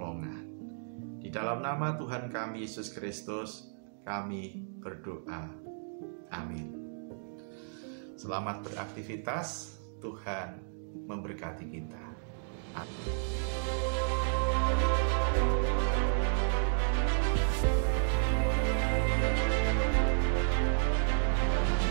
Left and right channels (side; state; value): left; silent; digital silence